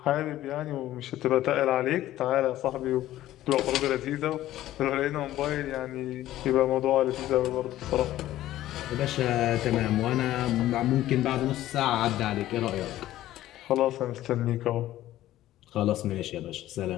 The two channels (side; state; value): right; quieter; 14.2 dB